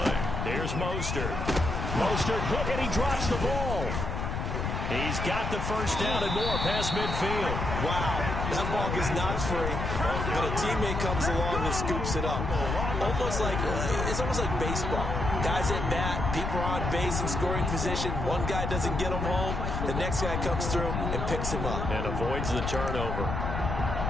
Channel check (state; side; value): noise; left; rumble, 2 dB below the sound